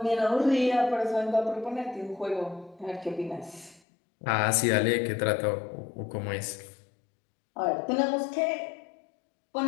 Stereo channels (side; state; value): right; drops out; at 3.8 s